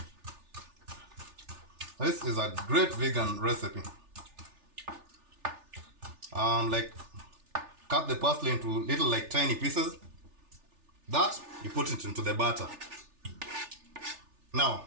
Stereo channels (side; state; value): left; late; 3.4 ms